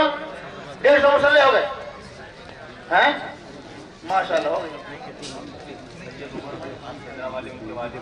150 مصلح ہو گئے ہیں, ماشاءاللہ ہو گئے.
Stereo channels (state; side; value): identical; both; correlation 1.00